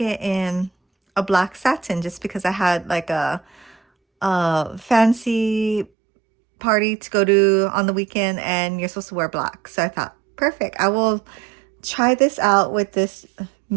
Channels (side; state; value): left; drops out; at 5.9 s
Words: in a black satin just because I had like a fancy party to go to on the weekend and you're supposed to wear black. So I thought, perfect. I will try this out with this